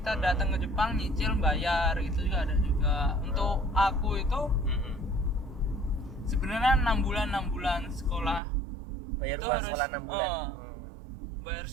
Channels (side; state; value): left; drops out; at 8.4 s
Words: datang ke Jepang nyicil bayar, gitu juga ada juga. Untuk aku itu sebenarnya 6 bulan sekolah. Bayar itu uang harus sekolah 6 bulan. Bayar